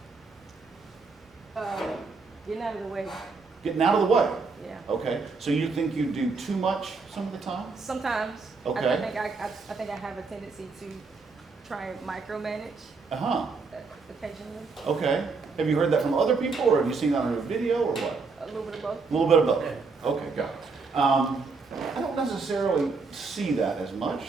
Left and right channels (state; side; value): quieter; left; 4.4 dB